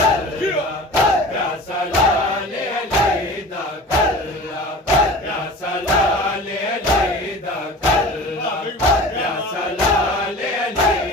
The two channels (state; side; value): normal; both; correlation 0.38